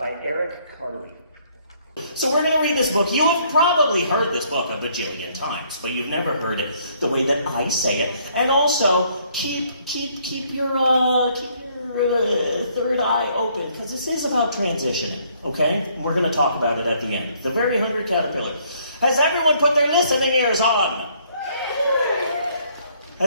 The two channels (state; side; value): inverted; both; correlation -0.65